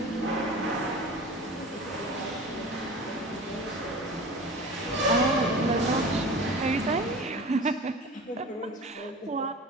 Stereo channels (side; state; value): both; normal; correlation 0.36